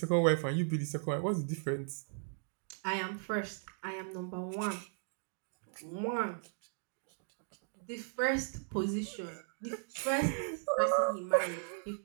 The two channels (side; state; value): left; silent; digital silence